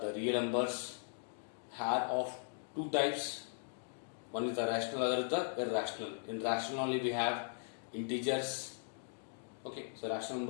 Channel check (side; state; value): right; silent; digital silence